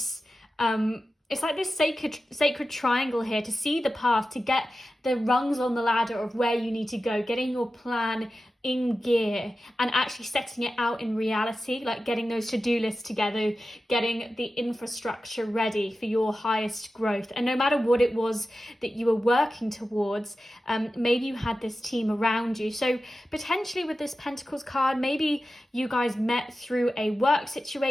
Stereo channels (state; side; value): normal; both; correlation 0.93